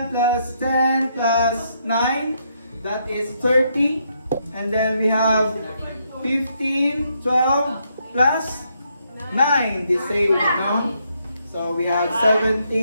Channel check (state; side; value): inverted; both; correlation -0.76